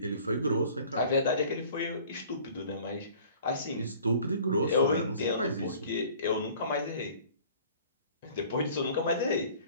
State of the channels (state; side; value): inverted; both; correlation -0.50